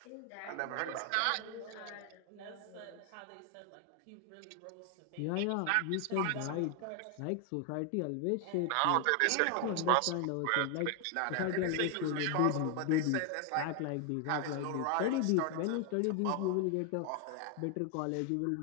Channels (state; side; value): different; both; correlation 0.00